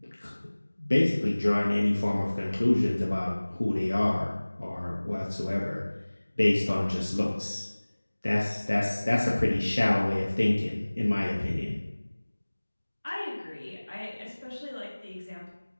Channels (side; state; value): both; inverted; correlation -1.00